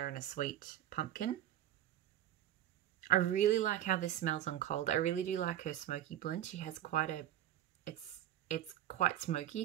and a sweet pumpkin. I really like how this smells on cold. I really do like her smoky blend. She has quite a, it's quite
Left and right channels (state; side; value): quieter; left; 11.9 dB